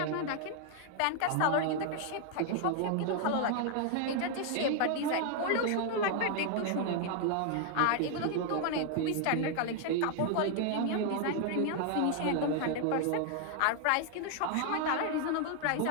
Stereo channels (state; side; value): different; both; correlation 0.00